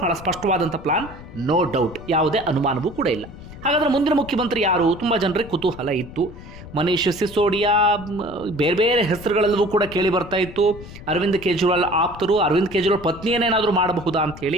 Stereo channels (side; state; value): left; noise; rumble, 15 dB below the sound